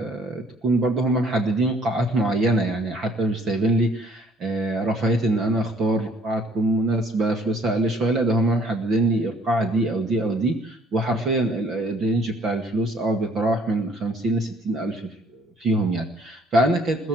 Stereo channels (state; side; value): normal; both; correlation 0.60